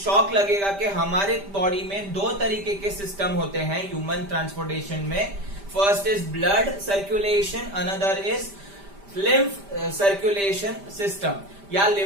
लगेगा कि हमारे बॉडी में दो तरीके के सिस्टम होते हैं ह्यूमन ट्रांसपोर्टेशन में। First is blood circulation, another is lymph circulation system या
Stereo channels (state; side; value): late; left; 5.1 ms